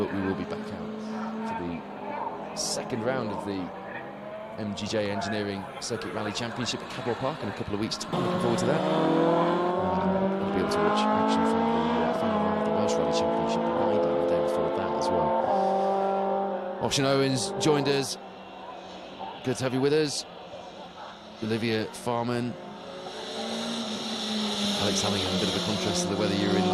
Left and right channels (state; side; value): identical; both; correlation 1.00